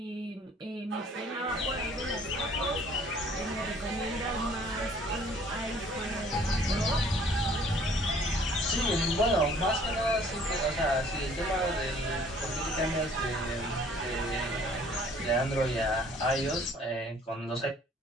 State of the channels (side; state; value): both; normal; correlation 0.56